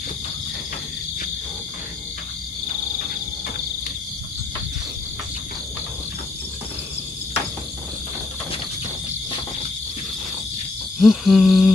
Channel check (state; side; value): quieter; right; 3.4 dB